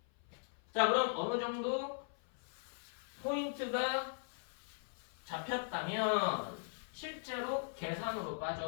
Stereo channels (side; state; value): right; silent; 51 dB below the other